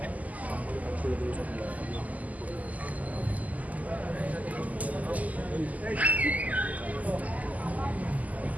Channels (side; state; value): left; late; 0.076 ms